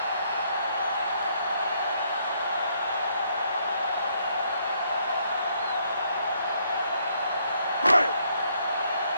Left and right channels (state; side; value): inverted; both; correlation -0.70